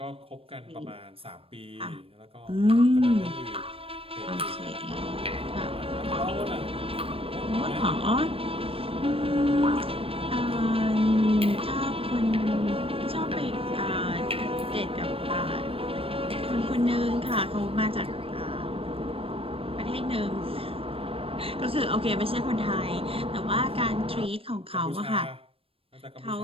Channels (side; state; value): left; late; 0.27 ms